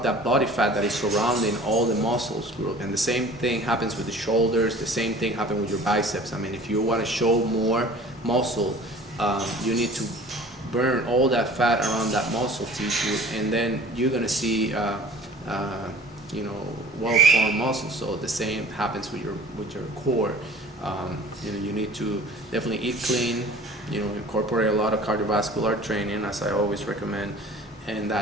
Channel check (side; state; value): both; normal; correlation 0.46